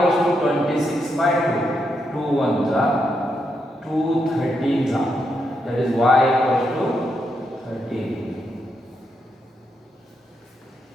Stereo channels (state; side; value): normal; both; correlation 0.81